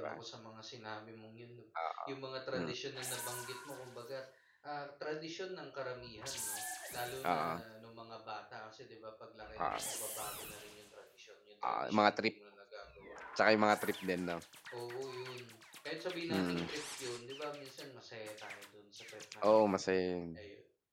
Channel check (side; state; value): both; identical; correlation 1.00